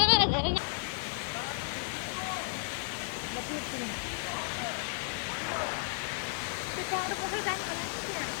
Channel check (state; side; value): silent; right; digital silence